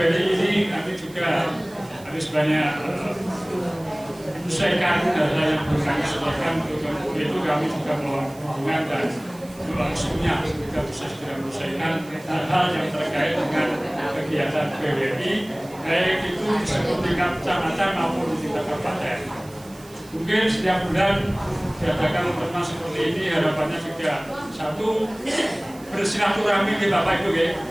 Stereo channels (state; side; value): noise; right; hiss, 23 dB below the sound